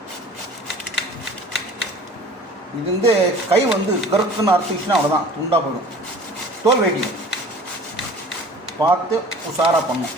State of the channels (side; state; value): both; normal; correlation 0.45